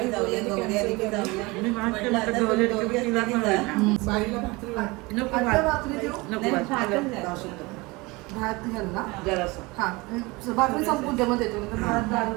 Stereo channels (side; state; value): left; quieter; 24.0 dB